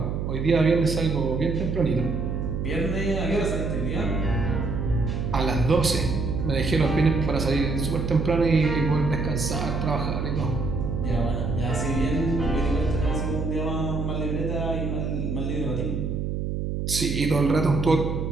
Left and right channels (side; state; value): right; noise; hum, 2 dB below the sound